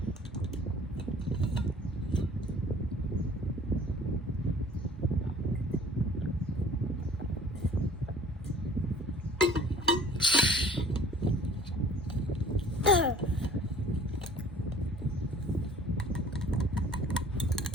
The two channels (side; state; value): both; normal; correlation 0.51